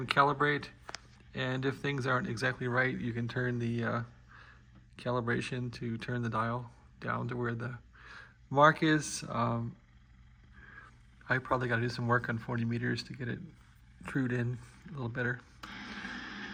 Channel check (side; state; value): both; identical; correlation 1.00